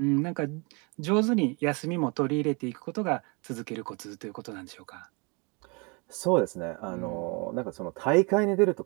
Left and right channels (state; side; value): quieter; left; 31.2 dB